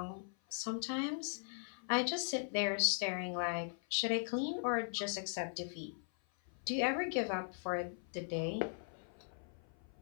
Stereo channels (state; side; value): silent; right; 51 dB below the other